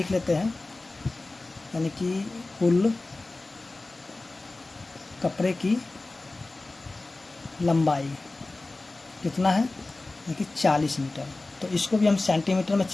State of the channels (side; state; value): right; quieter; 3.1 dB